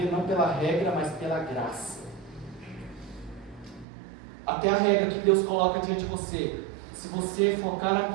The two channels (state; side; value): drops out; left; at 3.9 s